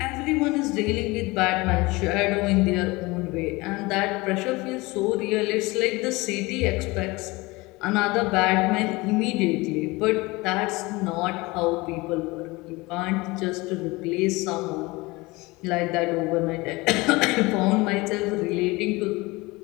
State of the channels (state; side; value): quieter; right; 22.9 dB